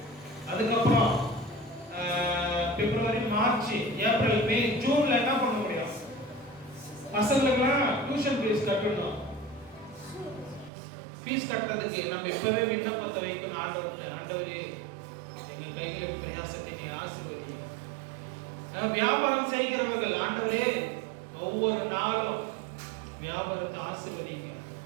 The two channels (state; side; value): drops out; left; at 10.7 s